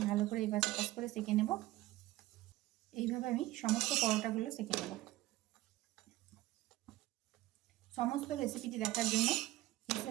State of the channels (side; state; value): left; quieter; 16.9 dB